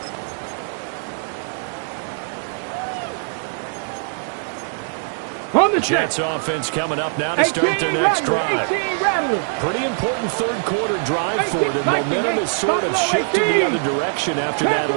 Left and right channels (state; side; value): silent; left; 64 dB below the other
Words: On the Jets check. offense coming up now to start their next drive. 18 Rattler. Pretty important third quarter drive for them. Momentum has sort of shifted the other direction after that